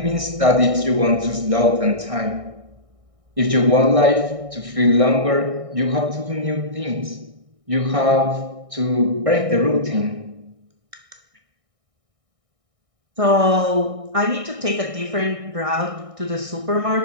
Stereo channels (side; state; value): left; late; 1.6 ms